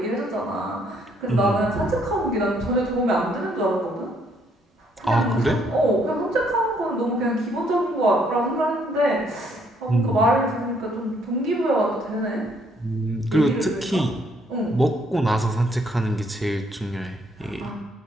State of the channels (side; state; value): both; normal; correlation 0.68